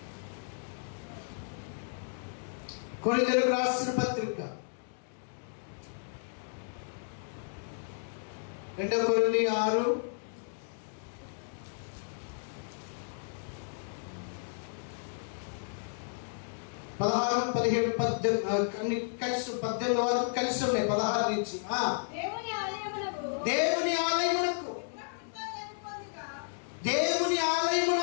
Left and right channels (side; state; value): right; silent; digital silence